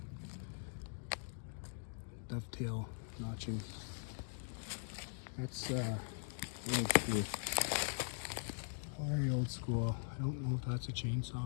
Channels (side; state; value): right; silent; digital silence